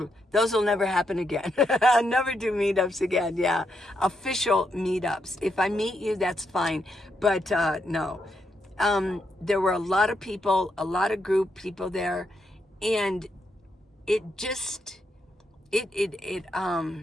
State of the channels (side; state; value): both; normal; correlation 0.81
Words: Those will never happen again. I'll never do meetups again. Yeah. Official meetups. If I meet you, that's fine. But no. There were a lot of people, a lot of group people there. And it just,